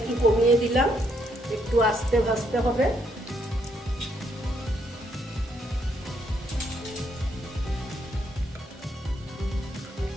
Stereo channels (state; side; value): normal; both; correlation 0.73